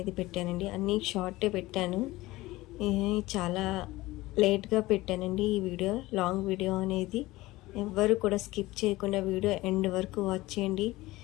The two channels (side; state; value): right; quieter; 18.9 dB